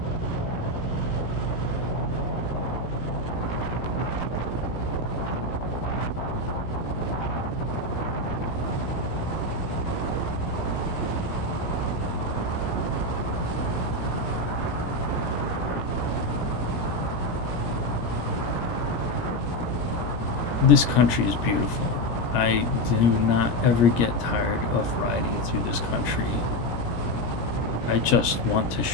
This country is beautiful. I do not ever get tired of riding through this country. I just want to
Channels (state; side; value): late; right; 17 ms